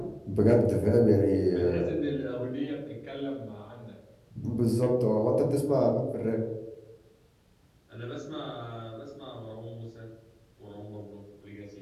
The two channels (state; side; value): identical; both; correlation 1.00